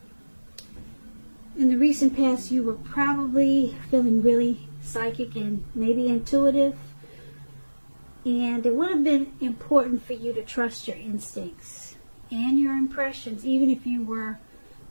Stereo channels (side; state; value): both; inverted; correlation -1.00